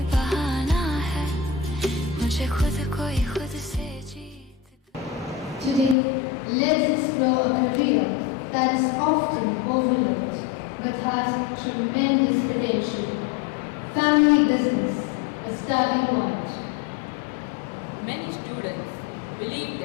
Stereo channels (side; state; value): right; drops out; at 6.0 s